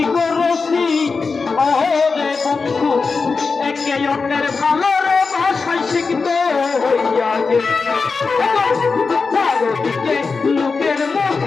করেছি রে বন্ধু একে অন্যের ভালোর ভাষায় শিখতে হইয়া গেছে চারদিকে লোকের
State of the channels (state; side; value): quieter; right; 4.6 dB